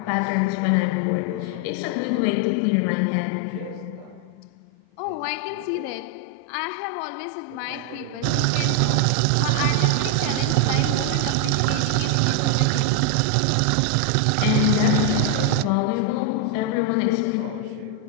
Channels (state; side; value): different; both; correlation 0.00